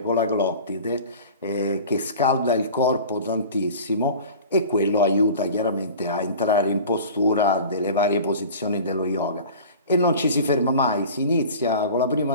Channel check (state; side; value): inverted; both; correlation -0.39